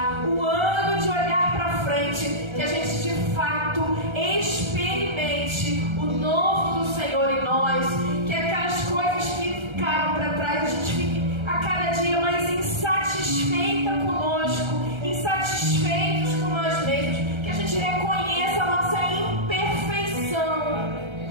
o ano de olhar pra frente, que a gente de fato experimente o novo do Senhor em nós, que aquelas coisas que ficaram para trás, a gente fique a cada dia mais insatisfeita conosco, insatisfeitos com nós mesmos, que a gente reconheça a nossa imperfeição,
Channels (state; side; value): late; left; 1.3 ms